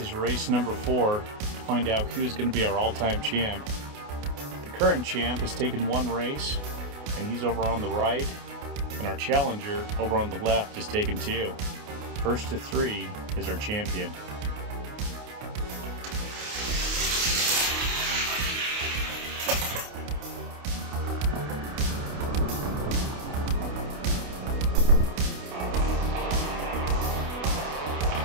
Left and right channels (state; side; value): late; left; 28 ms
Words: race number 4 to find out who's going to be our all-time champ. The current champ has taken 1 race, and he's over on the right, and our challenger over on the left has taken 2. First to 3 is our champion.